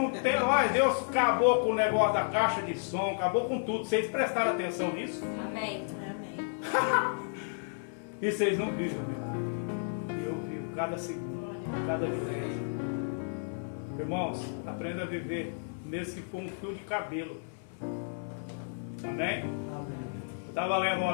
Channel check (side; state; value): right; silent; 56 dB below the other